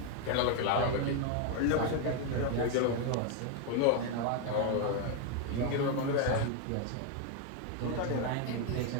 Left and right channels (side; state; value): both; different; correlation 0.01